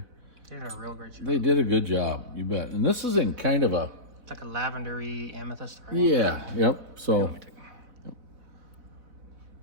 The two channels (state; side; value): late; left; 4.0 ms